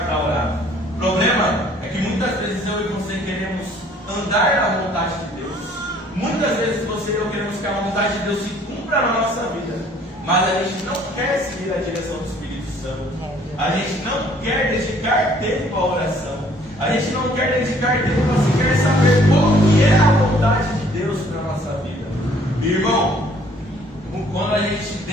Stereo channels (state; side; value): normal; both; correlation 0.59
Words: para orar. O problema é que muitas vezes eu e você queremos andar na vontade de Deus. Muitas vezes você e eu queremos que a vontade de Deus se cumpra na nossa vida, mas a gente não quer seguir a direção do Espírito Santo. A gente não quer dedicar tempo à oração. A gente não quer dedicar tempo para sequer saber qual que é a vontade de Deus para a nossa vida. Irmão, quando a gente